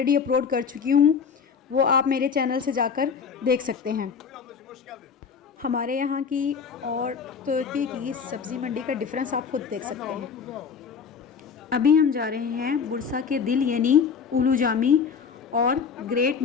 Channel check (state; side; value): quieter; right; 6.2 dB